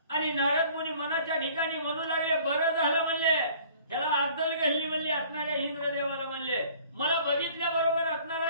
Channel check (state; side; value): inverted; both; correlation -0.52